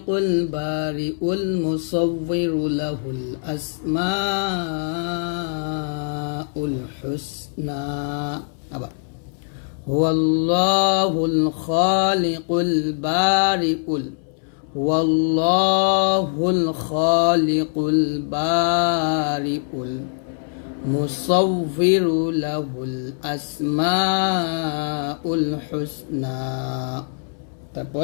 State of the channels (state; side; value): silent; right; 64 dB below the other